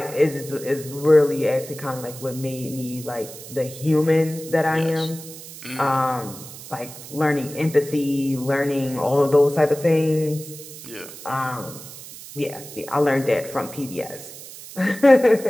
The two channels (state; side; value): noise; right; hiss, 14 dB below the sound